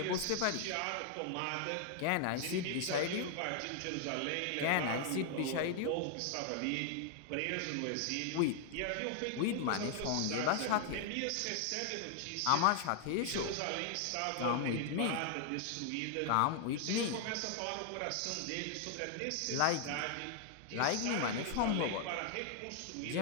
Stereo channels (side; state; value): both; different; correlation 0.00